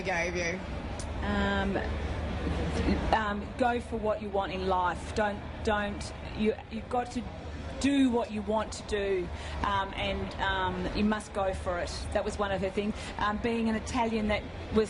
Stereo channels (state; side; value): identical; both; correlation 1.00